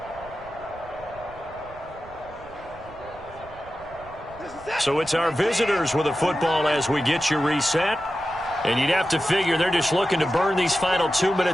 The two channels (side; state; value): right; noise; rumble, 20 dB below the sound